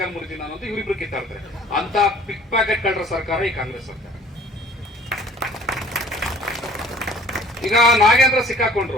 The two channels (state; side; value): normal; both; correlation 0.51